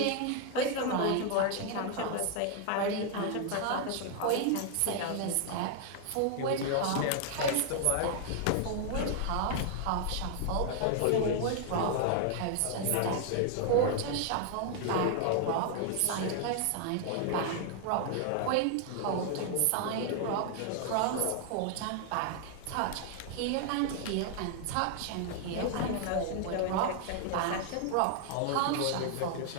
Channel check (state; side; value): different; both; correlation 0.00